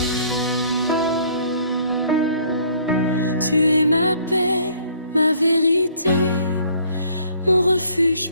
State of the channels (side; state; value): both; inverted; correlation -0.59